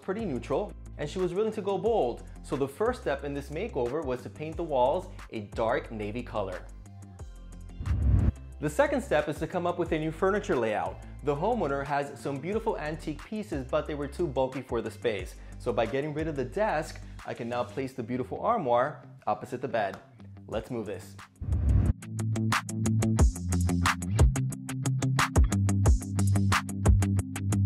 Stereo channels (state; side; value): identical; both; correlation 1.00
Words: neutral and she was willing to go bold, so the first step in this makeover was to paint the walls a dark navy color. The second step is to come up with a new furniture layout. The homeowner has some beautiful antique pieces, but they were too bulky for the space. So by getting rid of the desk, I can now place the beautiful armoire opposite the bed. Let's move this.